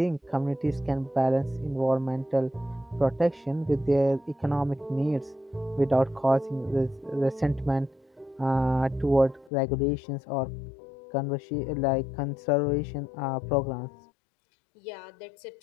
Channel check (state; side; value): drops out; right; at 9.5 s